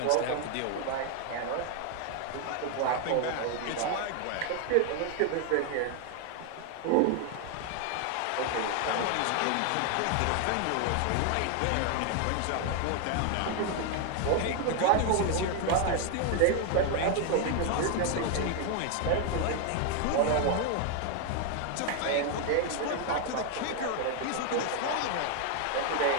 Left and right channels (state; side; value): different; both; correlation 0.00